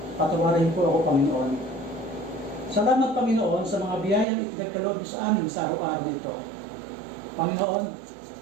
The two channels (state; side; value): drops out; left; at 4.2 s